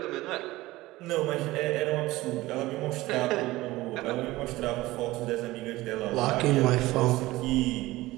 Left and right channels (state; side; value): quieter; left; 18.4 dB